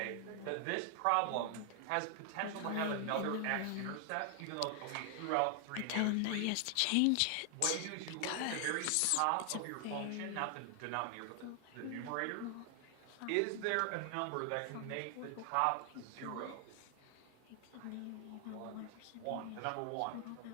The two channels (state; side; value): different; both; correlation 0.00